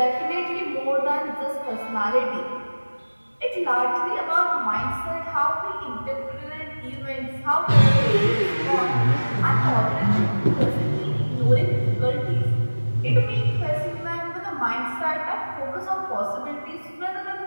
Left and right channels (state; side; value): inverted; both; correlation -1.00